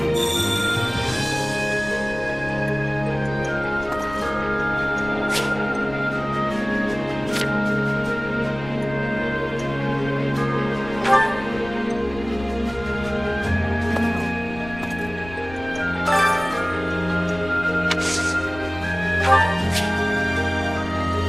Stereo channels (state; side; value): noise; left; rumble, 16 dB below the sound